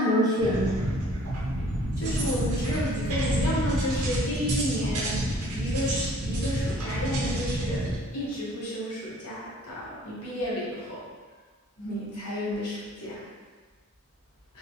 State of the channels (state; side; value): normal; both; correlation 0.56